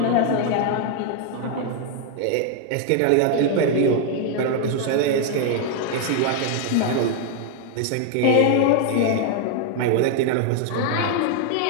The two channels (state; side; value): different; both; correlation 0.00